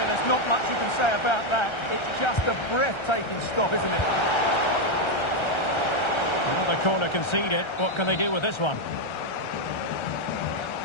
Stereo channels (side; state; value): right; late; 1.3 ms